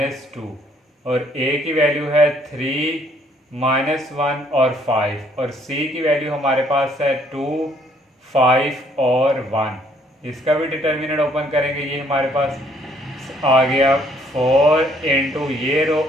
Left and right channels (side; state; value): both; normal; correlation 0.65